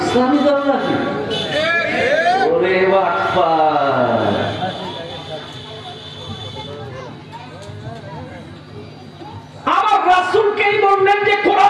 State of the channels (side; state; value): both; identical; correlation 1.00